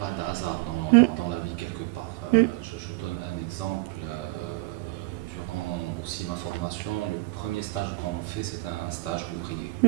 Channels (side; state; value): left; quieter; 22.0 dB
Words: de hasard dans la vie quelque part. Je donne un exemple. Durant aussi ma formation, le premier stage qu'on fait, c'est un stage ouvrier.